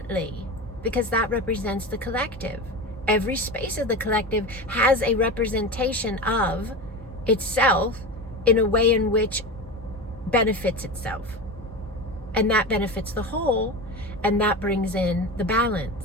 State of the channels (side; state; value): both; normal; correlation 0.25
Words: because that represents the collective. Every space of the collective has a representation of itself in a way in which benefits itself. And that benefits the whole, and that brings in the